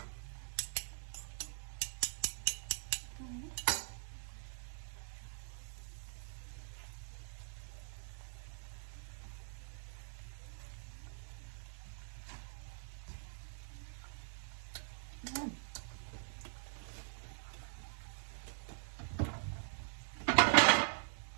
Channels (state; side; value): silent; left; digital silence